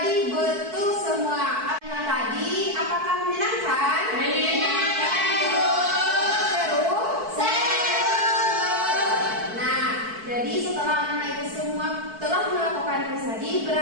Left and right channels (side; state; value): left; late; 4.6 ms